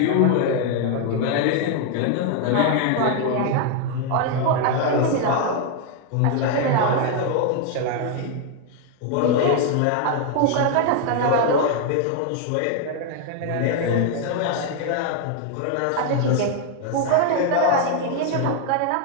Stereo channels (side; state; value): both; different; correlation 0.00